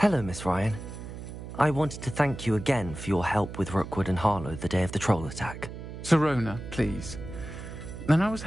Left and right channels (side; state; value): right; noise; hum, 10 dB below the sound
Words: Miss Ryan. I wanted to thank you again for your help with Rookwood and Harlow the day of the troll attack. Serona, please. And I was